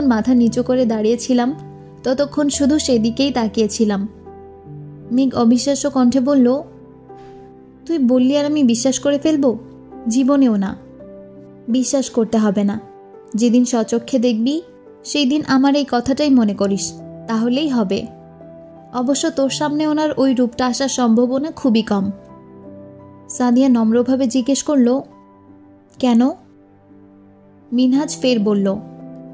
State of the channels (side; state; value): both; identical; correlation 1.00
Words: মাথা নিচু করে দাঁড়িয়েছিলাম ততক্ষণ শুধু সেদিকেই তাকিয়েছিলাম। মেঘ অবিশ্বাস্য কণ্ঠে বলল, তুই বললি আর আমি বিশ্বাস করে ফেলবো? জীবনেও না। বিশ্বাস করতে হবে না, যেদিন স্বচক্ষে দেখবি সেই দিন আমার এই কথাটাই মনে করিস, তাহলেই হবে। অবশ্য তোর সামনে ওনার ওই রূপটা আসার সম্ভাবনা খুবই কম। সাদিয়া নম্রভাবে জিজ্ঞেস করল, কেন? মিনহাজ ফের বলল,